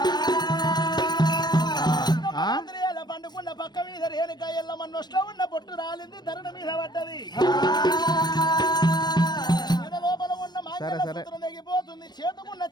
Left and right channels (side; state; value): right; late; 0.21 ms